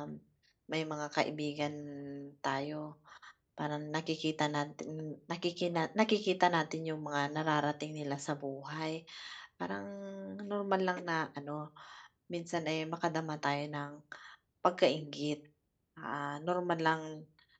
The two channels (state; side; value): identical; both; correlation 1.00